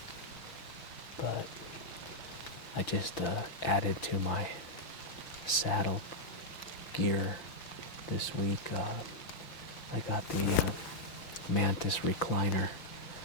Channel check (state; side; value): late; right; 5.9 ms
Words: But I just added to my saddle gear this week. I got the Mantis recliner